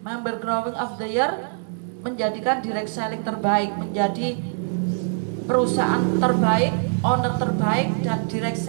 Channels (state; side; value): silent; left; digital silence